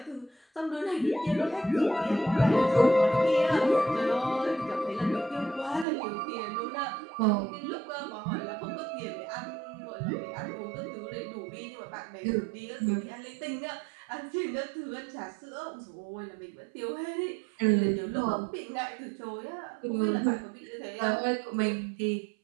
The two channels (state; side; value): drops out; left; at 5.9 s